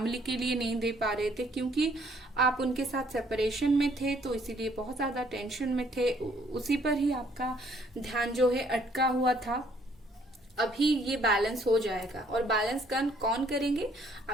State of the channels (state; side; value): normal; both; correlation 0.64